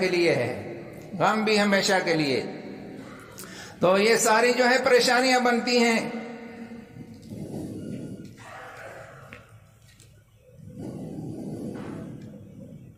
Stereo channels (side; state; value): both; identical; correlation 1.00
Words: لیے ہے، غم بھی ہمیشہ کے لیے۔ تو یہ ساری جو ہے پریشانیاں بنتی ہیں۔